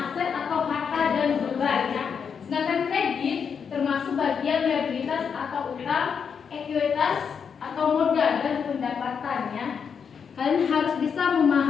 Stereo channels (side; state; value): right; quieter; 6.6 dB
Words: atau harta dan beban ya. Sedangkan kredit termasuk bagian liabilitas atau utang, ekuitas atau modal dan pendapatannya. Kalian harus bisa